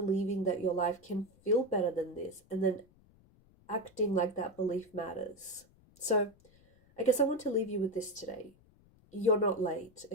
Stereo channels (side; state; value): left; noise; rumble, 29 dB below the sound